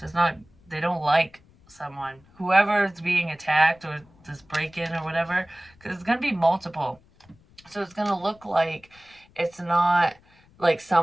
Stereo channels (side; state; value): left; noise; rumble, 29 dB below the sound